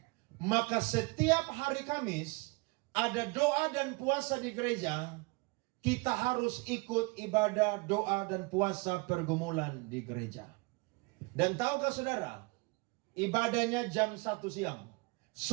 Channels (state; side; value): quieter; left; 27.4 dB